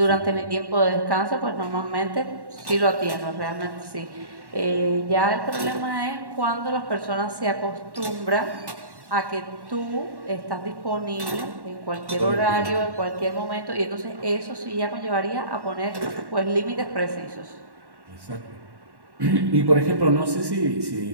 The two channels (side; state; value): left; late; 1.1 ms